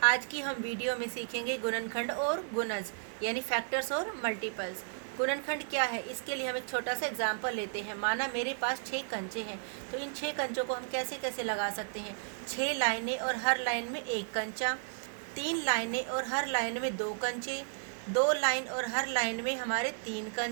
आज की हम वीडियो में सीखेंगे गुणनखंड और गुणज यानी फैक्टर्स और मल्टीपल्स। गुणनखंड क्या है, इसके लिए हम एक छोटा सा एग्जाम्पल लेते हैं। माना मेरे पास 6 कंचे हैं, तो इन 6 कंचों को हम कैसे कैसे लगा सकते हैं। 6 लाइनें और हर लाइन में एक कंचा, 3 लाइनें और हर लाइन में 2 कंचे, 2 लाइन और हर लाइन में हमारे 3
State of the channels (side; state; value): left; silent; digital silence